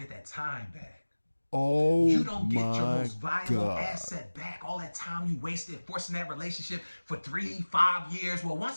that time back. Oh, you don't get your my most valuable God. asset back. All that time you wasted forcing that relationship for 3-5 years. Well,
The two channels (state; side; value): inverted; both; correlation -1.00